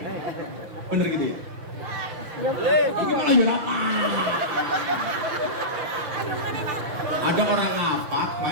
Bener gitu ya? Ini malah apa? Ada orang ngapak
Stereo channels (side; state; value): left; late; 6.2 ms